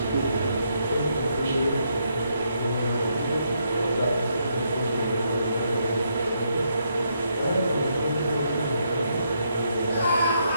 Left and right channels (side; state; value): both; inverted; correlation -0.76